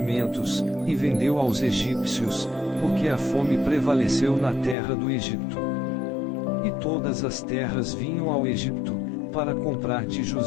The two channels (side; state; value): right; drops out; at 4.8 s